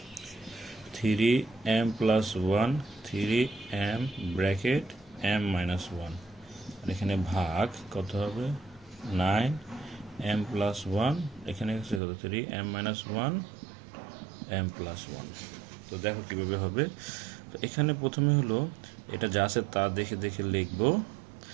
3m + 1 3m ব্র্যাকেট m - 1, আর এখানে ভাগ কত হবে 9m + 1, এখানে আছে কত 3m - 1 m + 1। তো দেখো কীভাবে হবে। তো এখানে প্রথমে হলো এটা যা আছে তা দেখে দেখে লিখবো,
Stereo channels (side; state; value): left; drops out; at 12.0 s